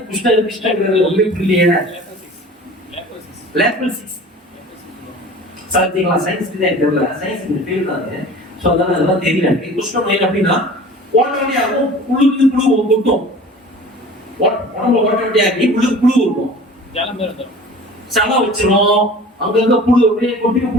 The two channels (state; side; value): normal; both; correlation 0.42